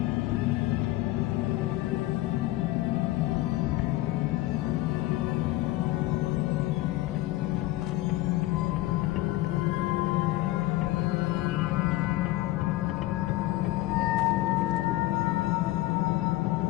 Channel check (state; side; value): quieter; right; 17.1 dB